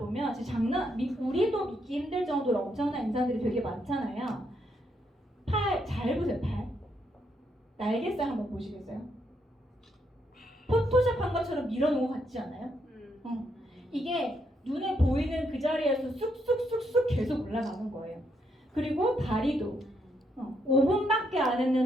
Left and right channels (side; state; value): both; normal; correlation 0.76